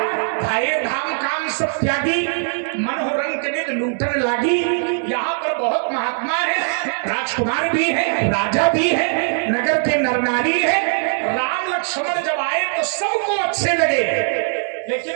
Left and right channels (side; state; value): left; silent; 66 dB below the other